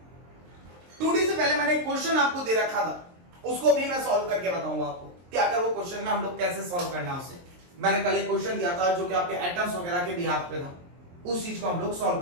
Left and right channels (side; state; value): left; late; 23 ms